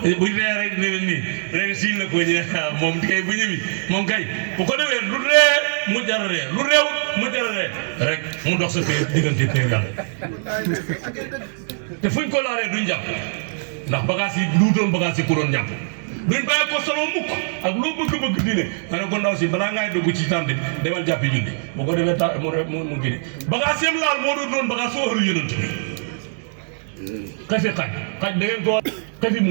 bu ree rek ne nii rek siin la ko ñu moom kay bu ñëwi moom kay bu ko defee lu ree mu jararee lu réew mu jararee rek mu dox sa pay diggante pay yàlla te fuñ ko laalee duñ jàpp ndax bagage yi lu doon bagage yi ku doon jàpp duñ bàyyi ko solo mukk ak loo bëgg-bëgg diine ma ne ko ndaw si balaa ngay dugg ci tànn demal jàppi julli bu ko defee ta mu gini bagage yam laal moo doon bagage soo ëru yonent bi xefi xaj da ngeen ko xefi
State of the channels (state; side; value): silent; left; digital silence